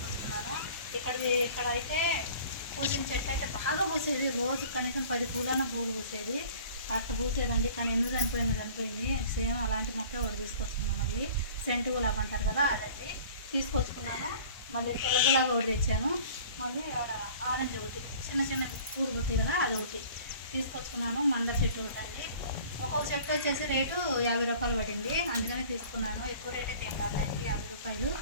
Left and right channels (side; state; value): both; inverted; correlation -0.47